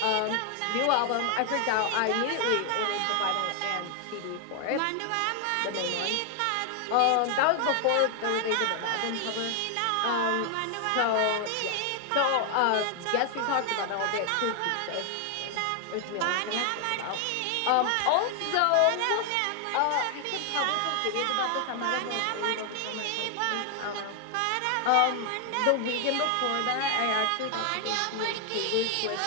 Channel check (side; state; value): both; different; correlation 0.00